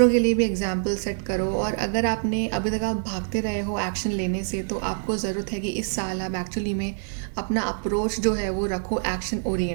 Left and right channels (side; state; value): left; silent; digital silence